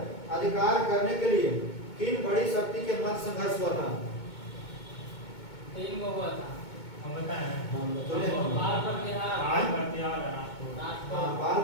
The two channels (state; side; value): late; right; 2.2 ms